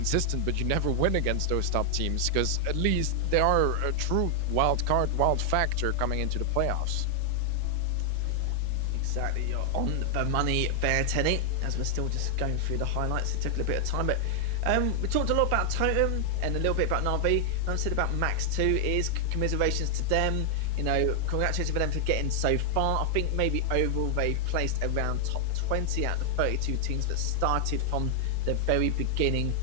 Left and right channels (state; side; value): different; both; correlation 0.00